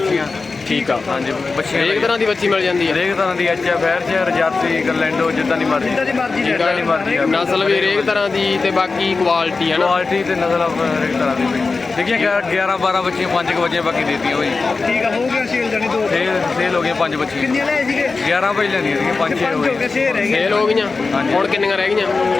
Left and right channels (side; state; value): right; quieter; 4.1 dB